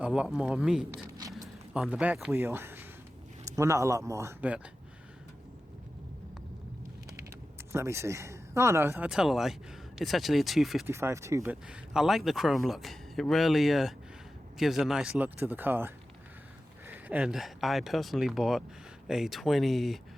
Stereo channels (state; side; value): normal; both; correlation 0.94